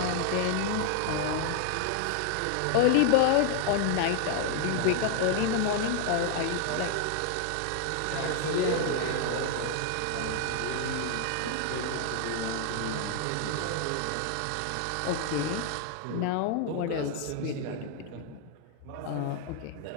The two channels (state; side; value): different; both; correlation 0.00